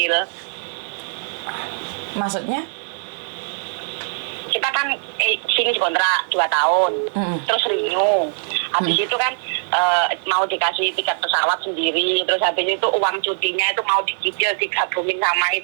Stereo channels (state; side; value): silent; left; 59 dB below the other